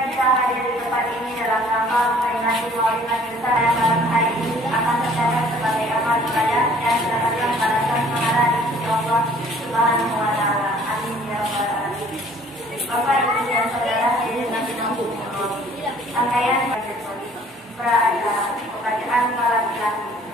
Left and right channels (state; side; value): normal; both; correlation 0.55